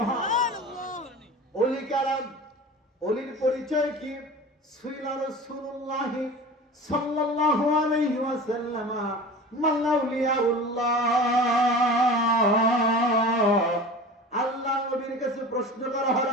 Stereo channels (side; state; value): both; normal; correlation 0.36